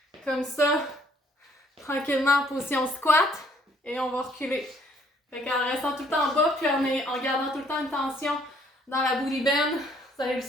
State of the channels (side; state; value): both; normal; correlation 0.63